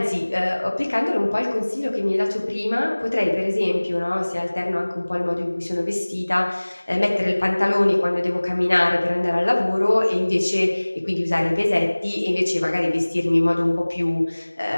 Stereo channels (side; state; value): both; inverted; correlation -1.00